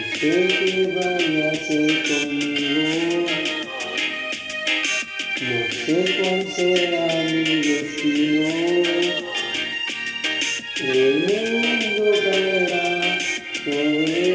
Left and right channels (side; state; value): both; identical; correlation 1.00